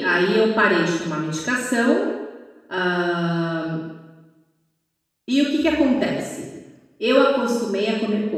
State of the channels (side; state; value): both; identical; correlation 1.00